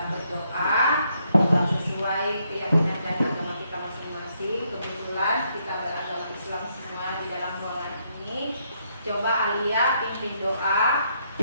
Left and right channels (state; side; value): inverted; both; correlation -0.75